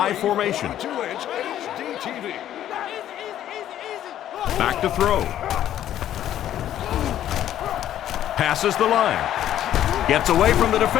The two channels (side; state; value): right; quieter; 11.6 dB